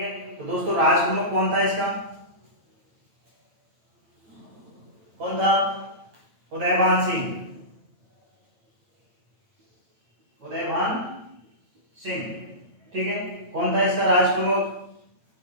तो दोस्तों राज प्रमुख कौन था इसका? कौन था? उदयभान सिंह। उदयभान सिंह। ठीक है, कौन था इसका राज प्रमुख?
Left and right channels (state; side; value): late; left; 8.9 ms